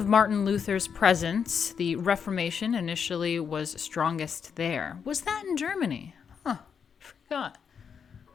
Martin Luther's presence, the Reformation initially was strongest there. Was that in Germany? Huh.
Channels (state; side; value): quieter; right; 6.8 dB